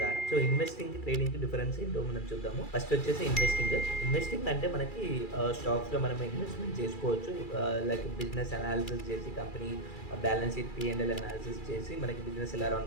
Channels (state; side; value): late; right; 2.3 ms